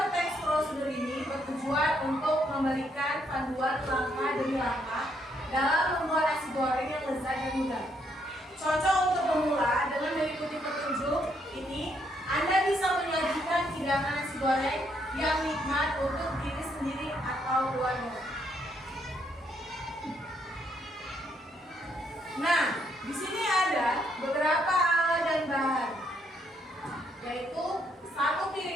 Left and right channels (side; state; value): both; normal; correlation 0.73